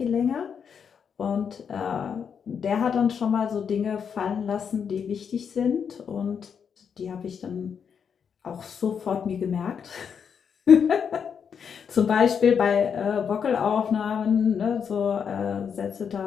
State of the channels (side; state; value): right; quieter; 7.0 dB